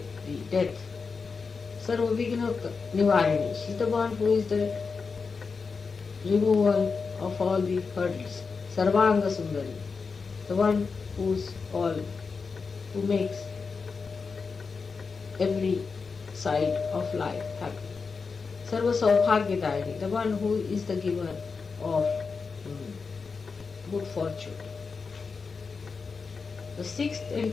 death. Sarva Vigna Nivarini, she is the one who is the removal of all the hurdles. Sarvanga Sundari, the one who makes every side of life happy. Sarva Saubhagyadayini, the one who is the giver of good fortune. The sixth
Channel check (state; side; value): quieter; right; 4.9 dB